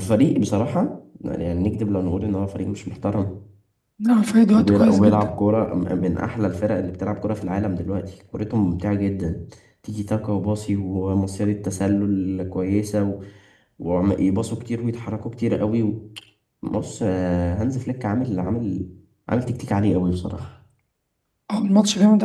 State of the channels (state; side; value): identical; both; correlation 1.00